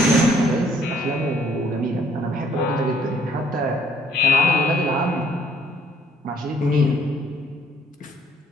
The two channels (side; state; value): both; normal; correlation 0.62